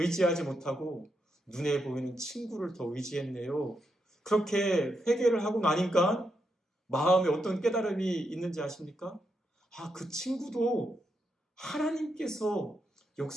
못하고 눈에 보이는 친구를 더 의지했네요. 그렇게 회개를 하고 나니까 마음에 어떤 깨달음이 있는지 아십니까? 아, 그 친구도 하나님께서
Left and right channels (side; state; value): both; normal; correlation 0.82